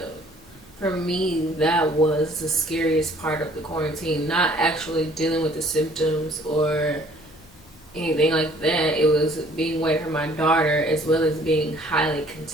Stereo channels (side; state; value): left; noise; hum, 30 dB below the sound